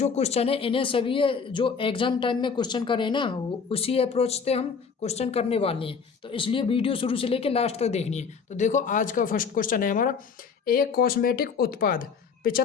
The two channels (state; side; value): quieter; right; 5.8 dB